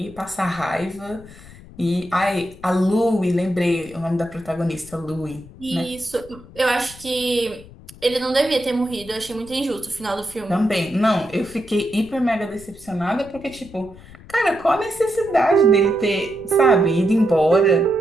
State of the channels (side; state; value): left; noise; rumble, 20 dB below the sound